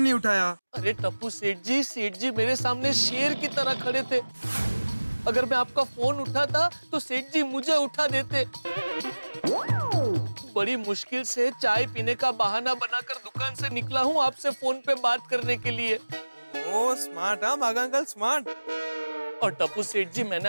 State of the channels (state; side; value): inverted; both; correlation -1.00